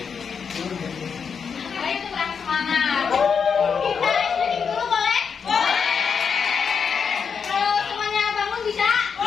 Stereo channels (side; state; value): right; quieter; 6.3 dB